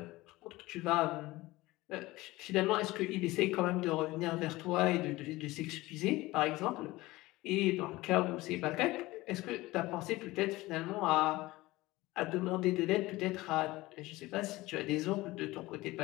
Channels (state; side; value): quieter; right; 19.4 dB